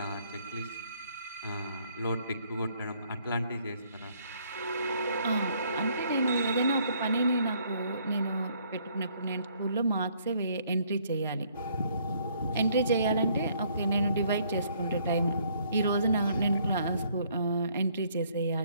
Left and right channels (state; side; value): inverted; both; correlation -0.65